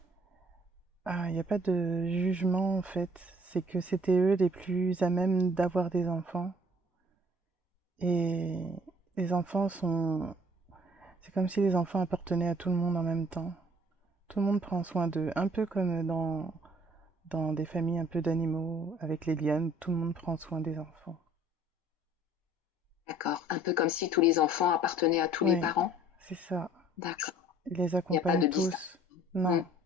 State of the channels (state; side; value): normal; both; correlation 0.56